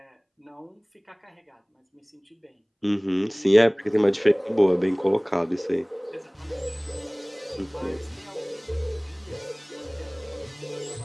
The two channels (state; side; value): identical; both; correlation 1.00